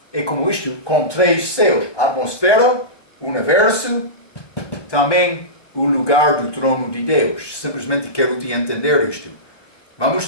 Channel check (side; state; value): right; late; 1.2 ms